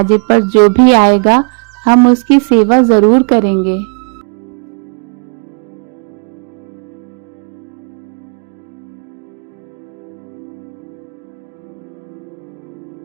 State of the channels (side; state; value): left; quieter; 39.5 dB